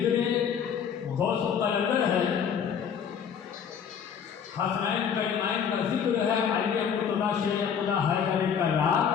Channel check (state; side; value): quieter; right; 7.5 dB